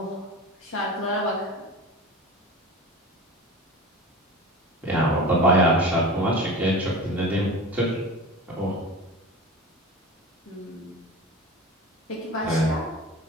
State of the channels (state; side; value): normal; both; correlation 0.32